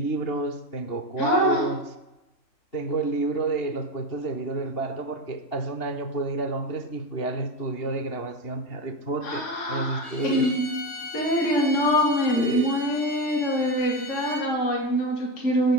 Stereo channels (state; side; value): late; right; 3.1 ms